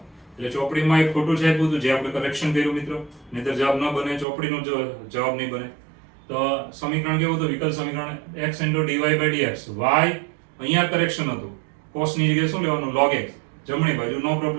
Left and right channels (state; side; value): drops out; left; at 4.2 s